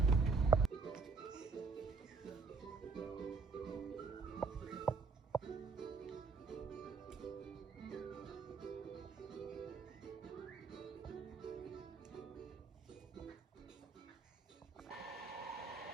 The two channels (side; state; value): left; quieter; 4.6 dB